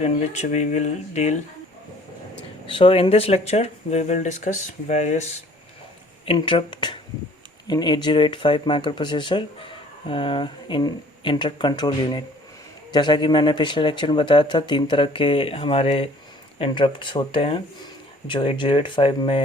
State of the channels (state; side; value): normal; both; correlation 0.54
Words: which we will deal. So in this lecture we will discuss various interrupt in 8085 microprocessor in interrupt control unit. जैसा कि मैंने पिछले lecture में बताया था, तीन तरह के हमारे इंटरप्ट्स होते हैं जो 8085